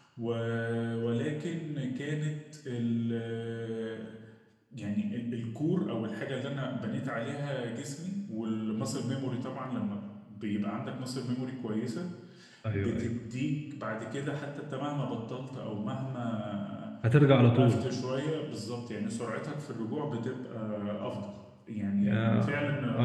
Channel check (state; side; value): identical; both; correlation 1.00